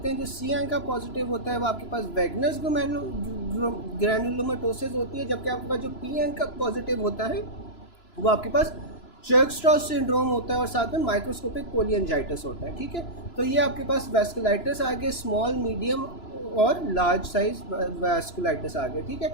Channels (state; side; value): late; right; 3.0 ms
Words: हैं। जो सी एंका पॉजिटिव होता है वो आपके पास वैगनस ग्रैनुलोमेटोसिस होती है, जबकि आपके पास जो पी एंका पॉजिटिव होता है वो आपके पास चर्कस्ट्रॉस सिंड्रोम होता है और साथ में माइक्रोस्कोपिक पोलियंजाइटिस होता है। ठीक है, तो ये आपके पास वैस्कुलाइटिस आ गए, स्मॉल, मीडियम और लार्ज साइज वैस्कुलाइटिस आ गए। ठीक है,